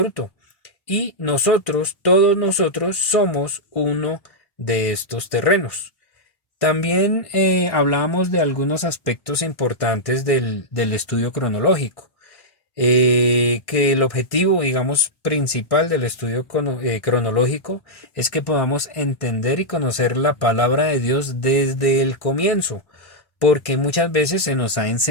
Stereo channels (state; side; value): late; right; 1.1 ms